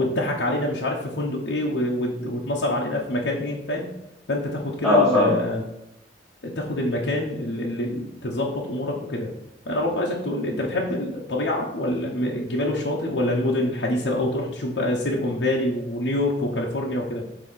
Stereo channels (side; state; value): both; normal; correlation 0.33